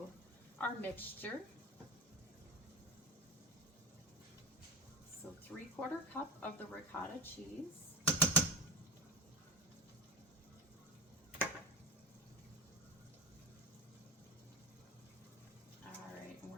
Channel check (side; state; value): both; normal; correlation 0.27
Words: our mixture. So 3/4 cup of the ricotta cheese.